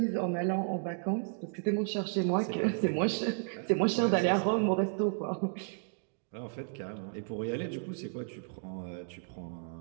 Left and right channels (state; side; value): silent; left; digital silence